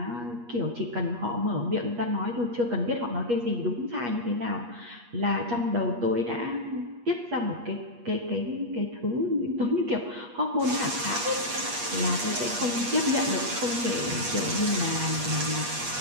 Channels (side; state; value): left; late; 8.4 ms